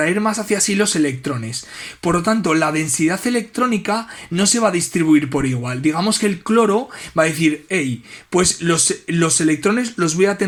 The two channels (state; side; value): identical; both; correlation 1.00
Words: más hacia sí los electrones. Por lo tanto, la densidad electrónica no se va a distribuir por igual. Digamos que el cloro va a decir, hey, pues los electrones los voy a